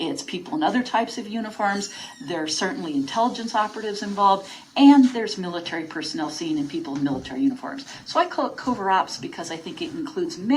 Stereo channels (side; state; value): both; identical; correlation 1.00